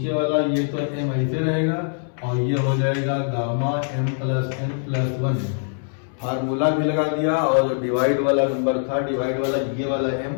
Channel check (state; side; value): silent; right; 64 dB below the other